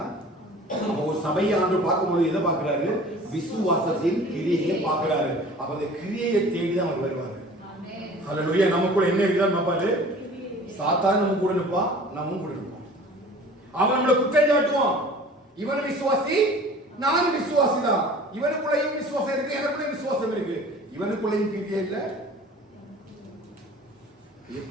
ஒரு சபையை ஆண்டு பார்க்கும்போது எதை பார்க்கிறாரு? விசுவாசத்தின் கிரியையை பார்க்கிறாரு. அப்ப அந்த கிரியையை தேடிதான் அவர் வருவாரு. ஹல்லேலூயா. நமக்குள்ள என்ன இருக்குதா பாப்பாரு? சாத்தான் நம்ம கூட நிற்பான், நம்மவும் கூட நிற்போம். அவன் நம்மளை குற்றம் சாட்டுவான். இவன் விசுவாசி, நானும் விசுவாசி தான். இவனுக்குள்ளையும் விசுவாசம் இருக்கு, எனக்குள்ளேயும் விசுவாசம் இருக்கு. இவனுக்குள்ளையும் கிரியை இல்லை.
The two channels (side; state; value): both; normal; correlation 0.45